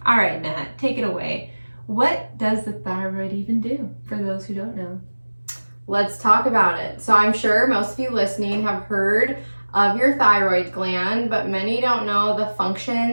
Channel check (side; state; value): both; inverted; correlation -1.00